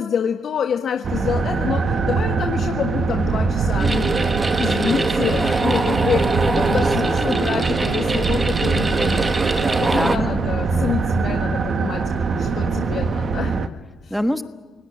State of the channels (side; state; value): both; normal; correlation 0.79